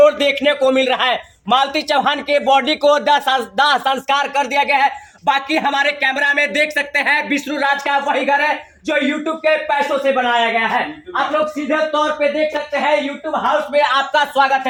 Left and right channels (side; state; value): both; identical; correlation 1.00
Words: देखने को मिल रहा है। मालती चौहान के बॉडी को दाह संस्कार कर दिया गया है। बाकी हमारे कैमरा में देख सकते हैं विष्णु राज का वही घर है जो यूट्यूब के पैसों से बनाया गया है। आप लोग सीधे तौर पे देख सकते हैं यूट्यूब हाउस में आपका स्वागत